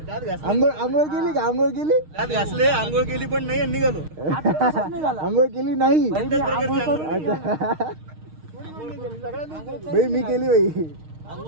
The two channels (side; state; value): left; late; 6.5 ms